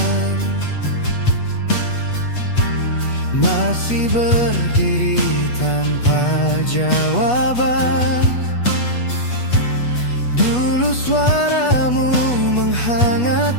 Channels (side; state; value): right; late; 8.2 ms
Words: masih berdiri tanpa jawaban. Dulu suaramu